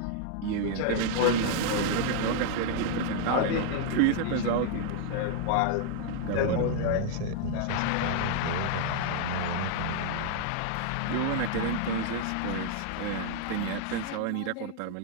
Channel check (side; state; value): both; different; correlation 0.00